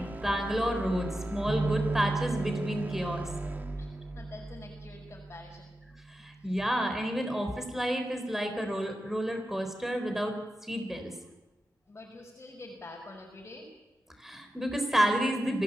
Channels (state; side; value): normal; both; correlation 0.90